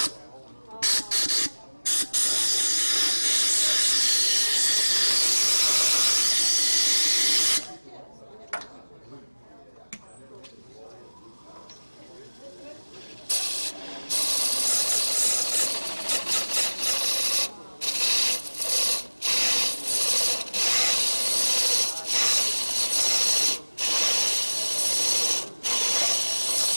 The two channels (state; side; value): inverted; both; correlation -1.00